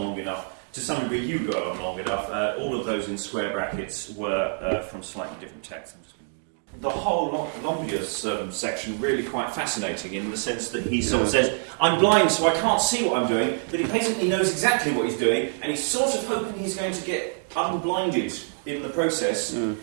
enough. To some degree, you go on long enough. All of those in square brackets were from slightly different texts. The whole Longius section really quite fascinating in the sense that he sort of says, I'm blind so I can't see what I'm doing, but he basically knows exactly what he's doing, and he's sort of hoping he's going to get unblinded in the process, and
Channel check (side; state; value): left; silent; 60 dB below the other